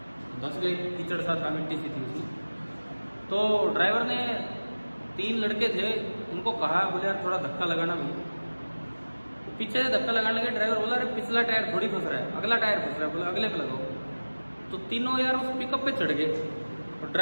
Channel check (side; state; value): both; inverted; correlation -1.00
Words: धंस गए, कीचड़ सा था, मिट्टी सी थी उसमें। तो ड्राइवर ने 3 लड़के थे, उनको कहा, बोले यार थोड़ा धक्का लगाना भाई। तो पीछे से धक्का लगाने लगे, ड्राइवर बोला अरे पिछला टायर थोड़ी फंस रहा है, अगला टायर फंस रहा है, बोला अगले पे लगाओ। तो तीनों यार उस पिकअप पे चढ़ गए और